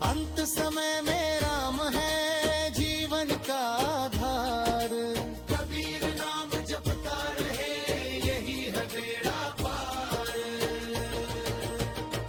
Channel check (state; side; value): identical; both; correlation 1.00